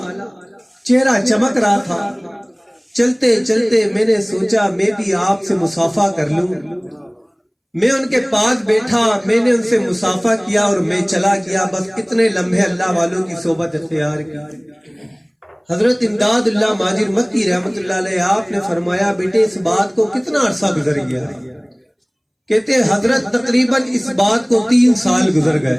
چہرہ چمک رہا تھا. چلتے چلتے میں نے سوچا میں بھی آپ سے مصافحہ کر لوں. میں ان کے پاس بیٹھا, میں نے ان سے مصافحہ کیا اور میں چلا گیا. بس اتنے لمحے اللہ والوں کی صحبت اختیار کی. حضرت امداد اللہ ماجر مکی رحمت اللہ علیہ آپ نے فرمایا بیٹے اس بات کو کتنا عرصہ گزر گیا. کہتے حضرت تقریباً اس بات کو 3 سال گزر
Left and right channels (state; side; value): identical; both; correlation 1.00